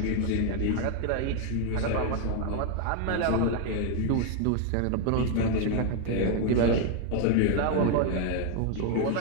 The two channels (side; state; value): both; different; correlation 0.01